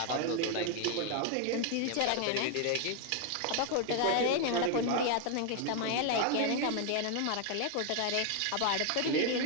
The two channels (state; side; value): different; both; correlation 0.01